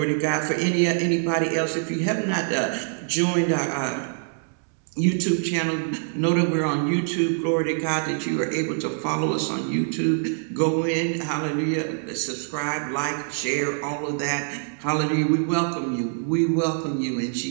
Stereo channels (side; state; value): left; silent; digital silence